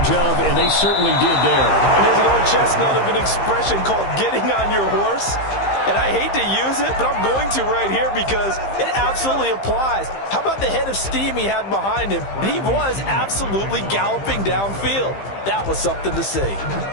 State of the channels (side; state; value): right; late; 15 ms